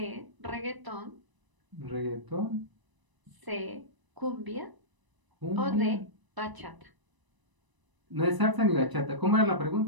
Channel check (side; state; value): left; late; 1.0 ms